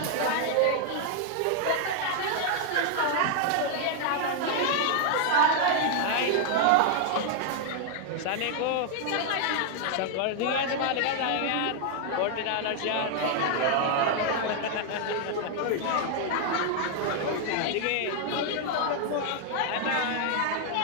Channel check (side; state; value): both; different; correlation 0.00